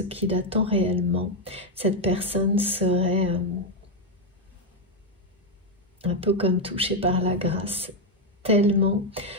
qu'il attend réellement, cette personne serait un peu comme touchée par la grâce, tellement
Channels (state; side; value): normal; both; correlation 0.04